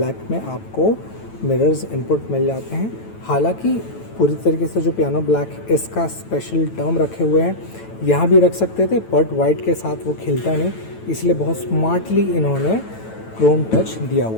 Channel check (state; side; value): late; right; 9.1 ms